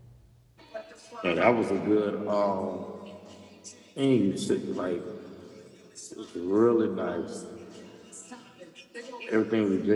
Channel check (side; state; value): both; identical; correlation 1.00